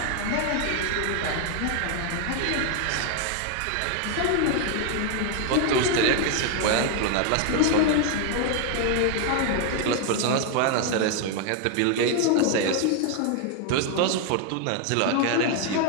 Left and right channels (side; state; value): both; different; correlation 0.00